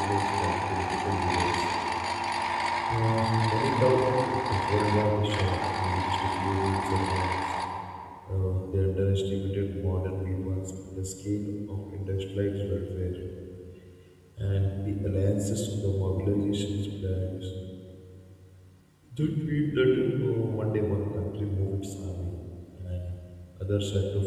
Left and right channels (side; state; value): both; identical; correlation 1.00